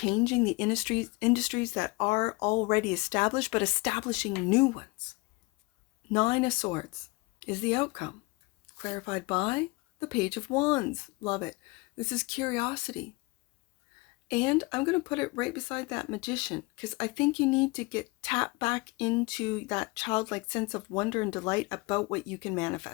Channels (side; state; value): right; quieter; 25.4 dB